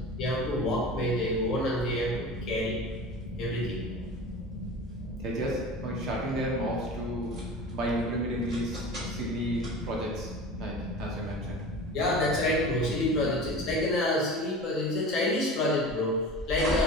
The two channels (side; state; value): both; normal; correlation 0.35